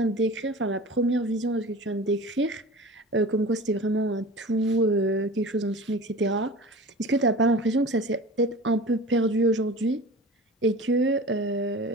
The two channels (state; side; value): normal; both; correlation 0.36